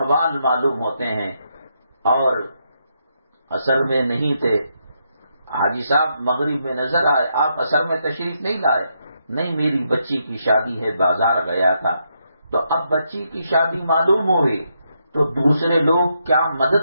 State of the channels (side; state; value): both; inverted; correlation -0.80